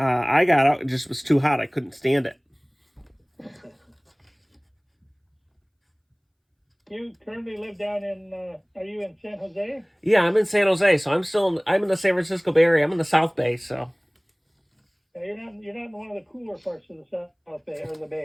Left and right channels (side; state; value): both; identical; correlation 1.00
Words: got out, it just was too hot. I couldn't stand it. You currently live down in, are you in San Jose? Yeah, I'm in San Jose, so I'm in the San Francisco Bay Area. I'm in the South Bay, so. You're not in one of the cooler parts of the South Bay or the